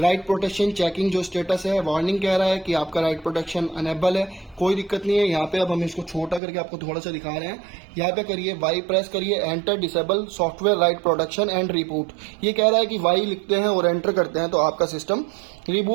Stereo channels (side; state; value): left; drops out; at 6.4 s